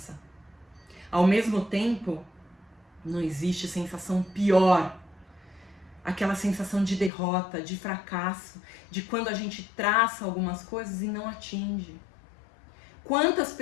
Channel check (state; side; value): drops out; right; at 7.1 s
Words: Ao mesmo tempo, não existe sensação pior. Aquela sensação de derrota, de fracasso, de quando a gente traça algumas coisas e não atinge. Quantas